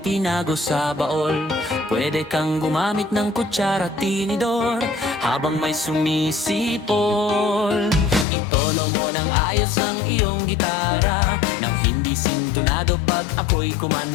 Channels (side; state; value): right; drops out; at 8.2 s